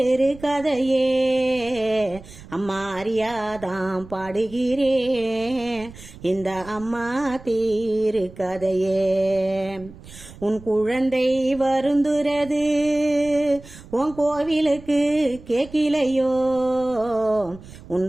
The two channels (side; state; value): right; noise; rumble, 18 dB below the sound